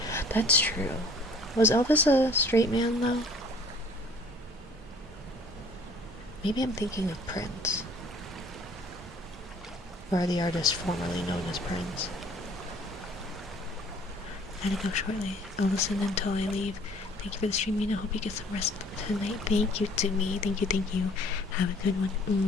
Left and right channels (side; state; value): both; normal; correlation 0.54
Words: That's true. Was Elvis a straight man, though? Maybe I'm thinking of Prince. Or the artist formerly known as Prince. Gotta go shortly. I'll listen until I leave. Thank you for the stream, Mina. Hope you get some rest tonight. Thank you to me. Thank you, thank you. Have a good one.